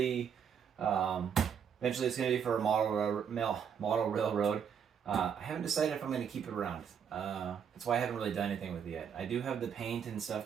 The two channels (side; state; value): left; quieter; 7.6 dB